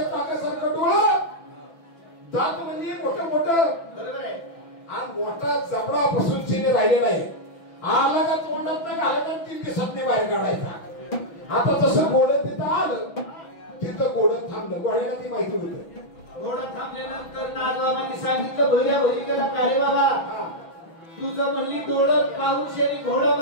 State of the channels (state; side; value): late; right; 6.0 ms